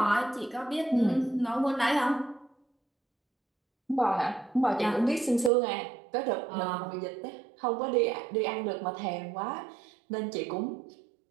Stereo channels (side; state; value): left; drops out; at 5.5 s